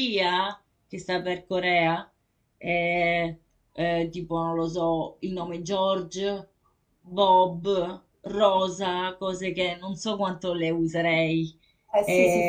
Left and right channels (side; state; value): both; identical; correlation 1.00